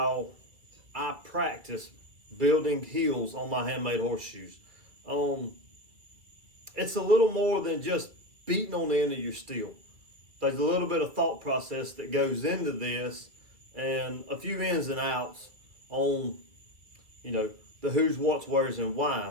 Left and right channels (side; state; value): left; late; 2.0 ms